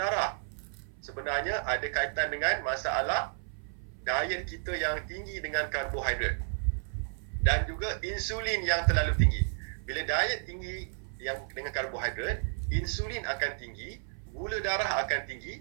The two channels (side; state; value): left; silent; 56 dB below the other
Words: Sebenarnya ada kaitan dengan masalah diet kita yang tinggi dengan karbohidrat dan juga insulin yang terlalu tinggi. Bila diet tinggi yang dengan karbohidrat, insulin akan tinggi, gula darah akan